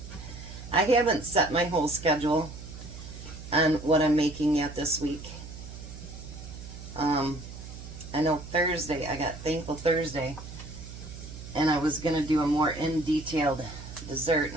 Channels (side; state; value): right; noise; hum, 12 dB below the sound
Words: I haven't set my whole schedule on what I'm making yet this week. I know Thursday, I got Thankful Thursday, and I was going to do a more in-detailed dessert,